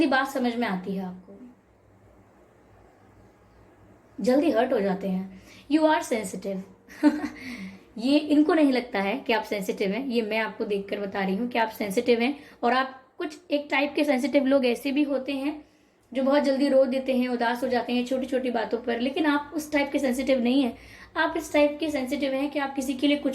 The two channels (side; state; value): both; identical; correlation 1.00